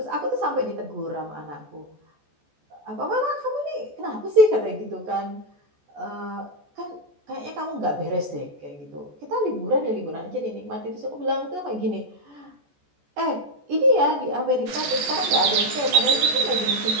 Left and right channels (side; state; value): left; late; 14 ms